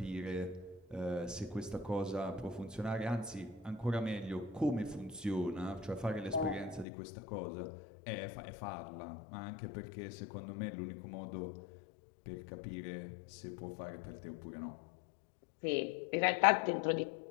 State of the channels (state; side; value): drops out; right; at 6.9 s